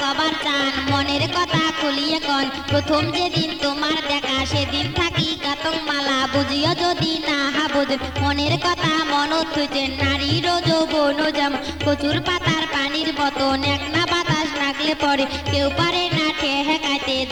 চান মনের কথা খুলিয়ে কন প্রথম যেদিন তোমার দেখা সেদিন থাকি কাতং মালা বুঝিও যদি না বুঝ মনের কথা মনত হইতে নারীর যৌবন যেমন কচুর পাতার পানির মতন এক না বাতাস লাগলে পরে কেউ পারে না ঠেকাইতে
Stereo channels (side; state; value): both; identical; correlation 1.00